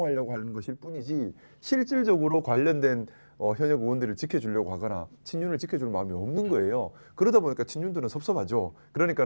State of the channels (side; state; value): both; inverted; correlation -1.00